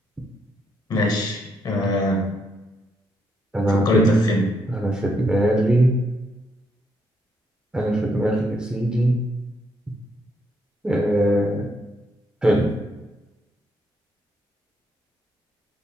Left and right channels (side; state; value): both; normal; correlation 0.76